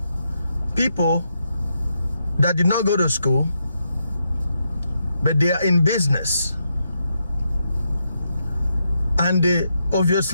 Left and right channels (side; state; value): both; inverted; correlation -0.82